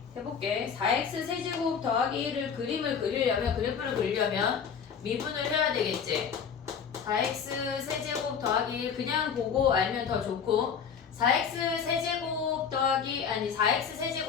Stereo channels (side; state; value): right; quieter; 6.9 dB